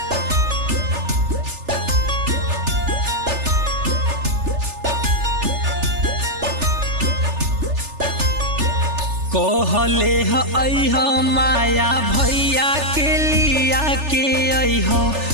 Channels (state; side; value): late; left; 3.4 ms